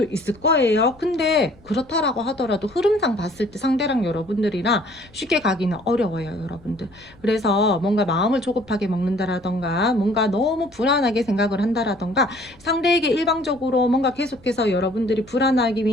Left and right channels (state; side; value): noise; left; rumble, 27 dB below the sound